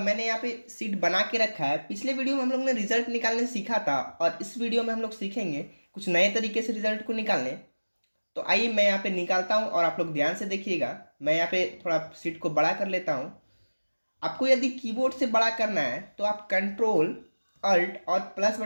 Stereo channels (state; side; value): inverted; both; correlation -1.00